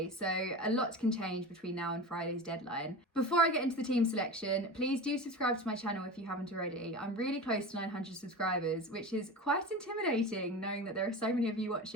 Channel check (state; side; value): normal; both; correlation 0.29